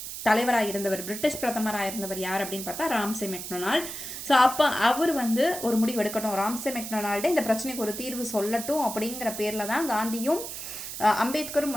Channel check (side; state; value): right; noise; hiss, 8 dB below the sound